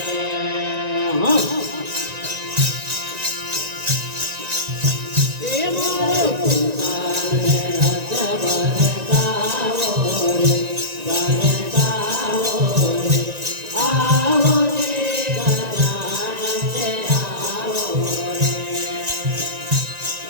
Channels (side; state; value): left; late; 1.9 ms